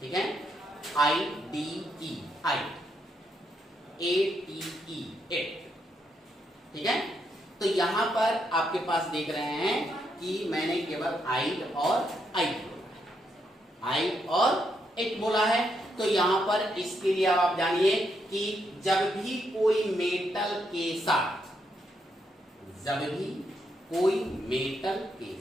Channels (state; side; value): normal; both; correlation 0.78